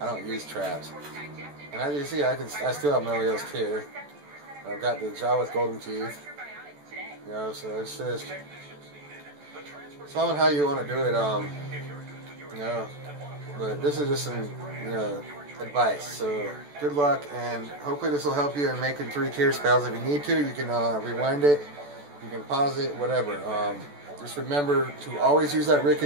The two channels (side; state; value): left; late; 14 ms